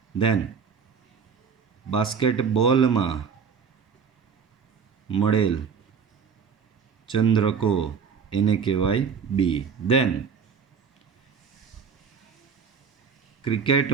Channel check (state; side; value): quieter; left; 6.3 dB